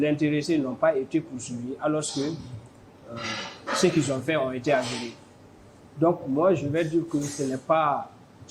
intéressés n'ont pas été poursuivis, alors que ce qu'ils ont fait ont été avérés. Donc, moi, je vais dire que ce n'est pas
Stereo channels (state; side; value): identical; both; correlation 1.00